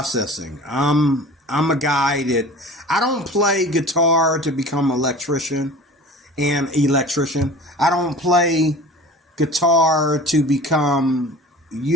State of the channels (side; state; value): both; normal; correlation 0.40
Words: I'm a guy that I don't play guitar to become an electrician. I don't play guitar to become,